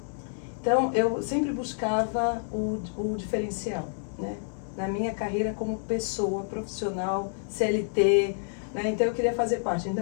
Então, eu sempre buscava o diferencial, né? Na minha carreira como pessoa profissional, CLT, né? Então, eu queria fazer parte.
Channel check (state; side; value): silent; right; digital silence